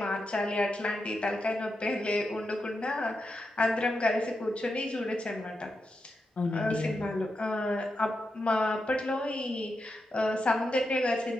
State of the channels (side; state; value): both; normal; correlation 0.87